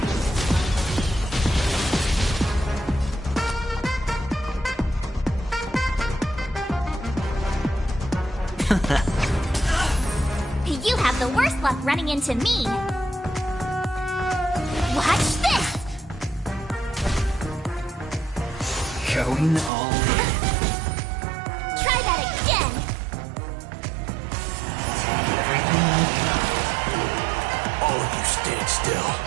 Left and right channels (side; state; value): left; drops out; at 19.7 s